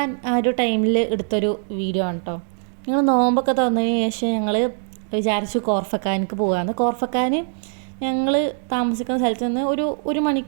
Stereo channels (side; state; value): left; silent; digital silence